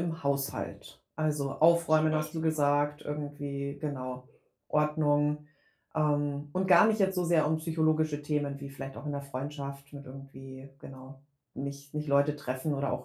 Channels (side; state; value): both; identical; correlation 1.00